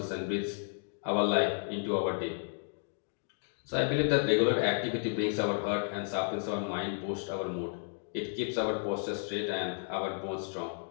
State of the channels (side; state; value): right; silent; digital silence